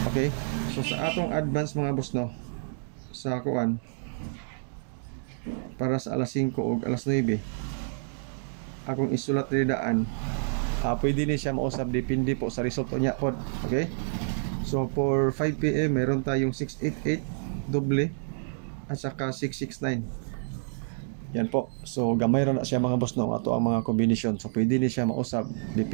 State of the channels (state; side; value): silent; left; digital silence